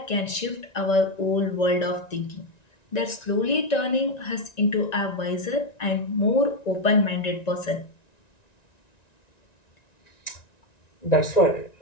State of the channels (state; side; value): late; right; 1.9 ms